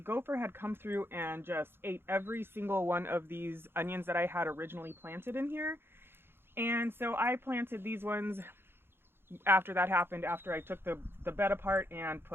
had come through and just ate every single one of these onions that I had originally planted in here. And so I planted these ones after that happened, after I took the bed apart and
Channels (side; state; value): left; late; 0.11 ms